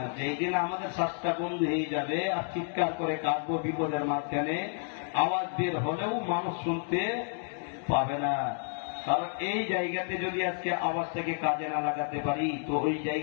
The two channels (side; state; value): right; silent; 57 dB below the other